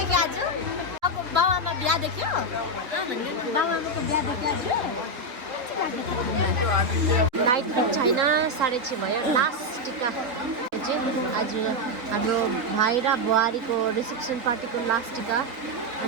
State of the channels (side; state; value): left; late; 4.0 ms